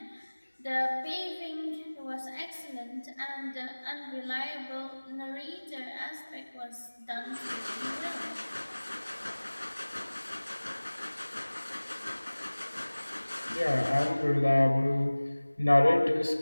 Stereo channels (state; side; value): inverted; both; correlation -1.00